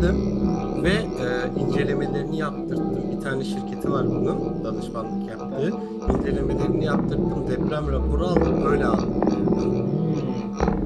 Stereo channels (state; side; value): identical; both; correlation 1.00